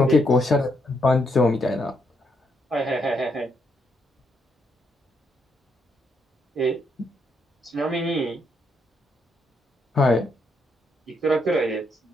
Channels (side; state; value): both; normal; correlation 0.76